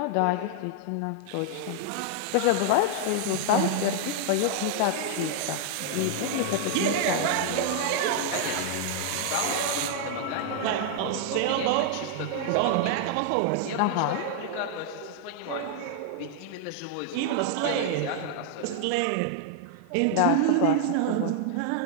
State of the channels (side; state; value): both; different; correlation 0.00